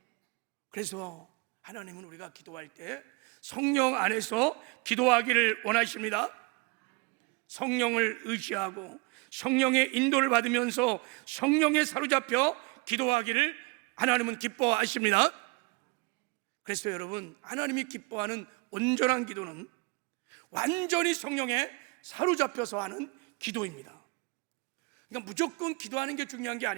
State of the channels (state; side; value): quieter; left; 29.4 dB